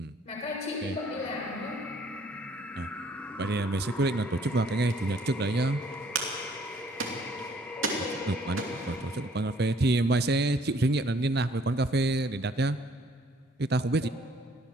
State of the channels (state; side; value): normal; both; correlation 0.60